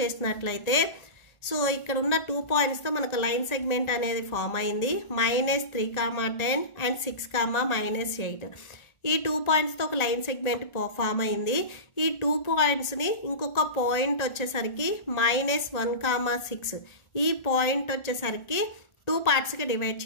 సో ఇక్కడ ఉన్న 2 పాయింట్స్తో మనకు లైన్ సెగ్మెంట్ అనేది ఫామ్ అయింది. -3, 10 and 6, -8. ఈ 2 పాయింట్స్తో ఒక లైన్ సెగ్మెంట్ ఫామ్ అయింది. ఈ 2 పాయింట్స్ని ఇంకొక పాయింట్ వచ్చేసరికి -1, 6 ఈ పాయింట్ వచ్చేసరికి 2 పార్ట్స్కి డివైడ్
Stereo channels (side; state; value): right; late; 1.4 ms